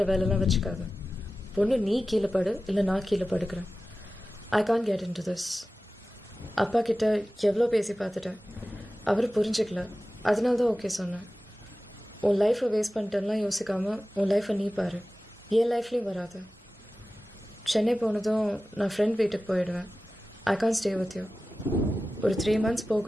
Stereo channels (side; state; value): both; normal; correlation 0.95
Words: வேலைலாம் வச்சுக்காது. பொண்ணு நீ கீழே படு, இல்லை நான் கீழே படுக்கிறேன். I can get in to this. அப்பா கிட்ட எவ்வளோ பேசி பார்த்துட்டேன், அவர் புரிஞ்சுக்கல. அதனால தான் ஓகே சொன்னேன். உன் லைஃப்பை வேஸ்ட் பண்ணிட்டேன்லாம் யோசிக்காமல் உன் லைஃப்பை நீ பாரு. என் லைஃப்லேயும் வராது. சென்னை போனதும் நான் ஃப்ரெண்ட் வீட்டுக்கு போயிடுவேன். ஐ கான் ஸ்டே வித் யூ. ஒரு 3 months